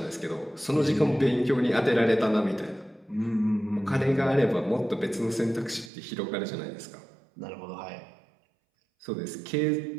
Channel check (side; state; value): left; drops out; at 5.9 s